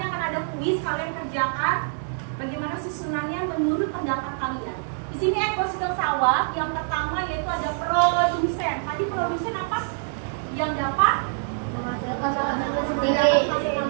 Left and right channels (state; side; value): silent; left; digital silence